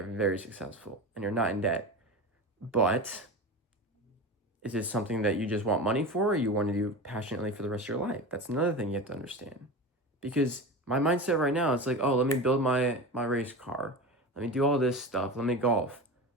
very successful, and you're not in debt. But is it something that you just want money for or you want to do passionately for the rest of your life? That's another thing you have to understand. Because my mindset right now, it's like, oh, let me build my race car. Let me do all this stuff. Let me golf.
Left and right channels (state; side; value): normal; both; correlation 0.27